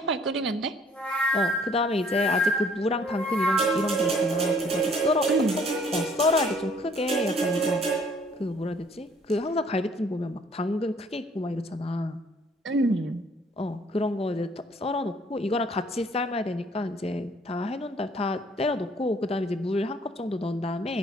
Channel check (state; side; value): normal; both; correlation 0.60